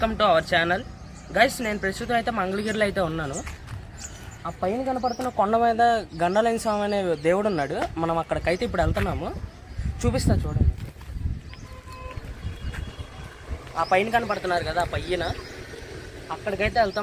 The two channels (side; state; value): both; identical; correlation 1.00